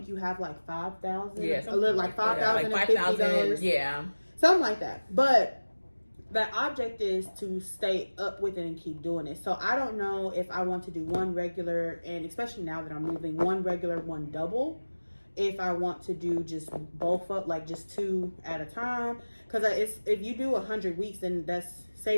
you have like 5,000. Yeah. A little like $5,050. Yeah. Something like that. But the object is to stay up with it and keep doing it. So I don't know if I want to do one regular, and especially now that I'm moving, one regular, one double. If I want to do just both up, like just 2 at a time. Because if you do 100 weeks, then that's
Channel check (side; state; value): both; inverted; correlation -1.00